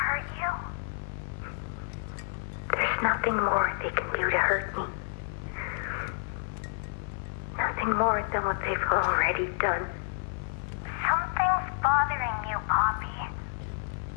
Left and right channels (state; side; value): silent; right; 58 dB below the other